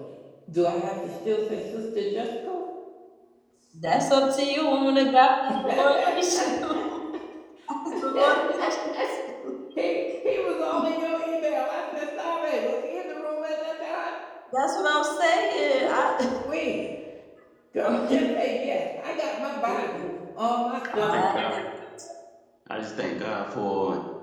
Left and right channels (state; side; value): identical; both; correlation 1.00